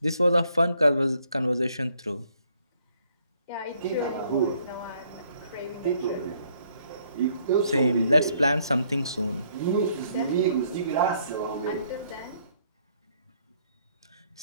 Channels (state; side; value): inverted; both; correlation -0.67